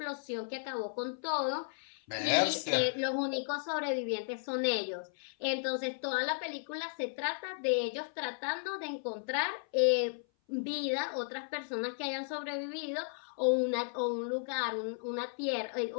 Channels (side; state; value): right; silent; 55 dB below the other